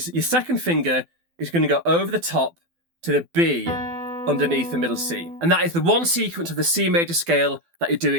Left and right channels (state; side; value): late; left; 12 ms